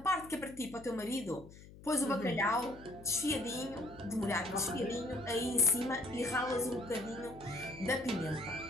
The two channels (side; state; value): left; noise; hum, 18 dB below the sound